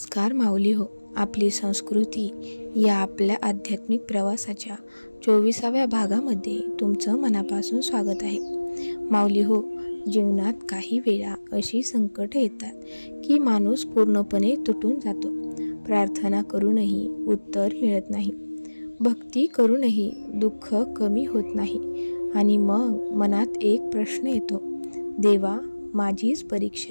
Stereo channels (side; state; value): both; inverted; correlation -1.00